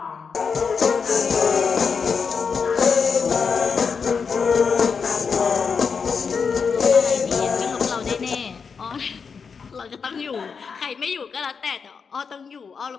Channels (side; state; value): right; quieter; 5.7 dB